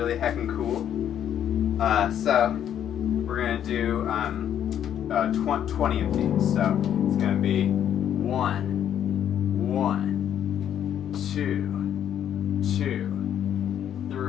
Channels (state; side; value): quieter; right; 9.9 dB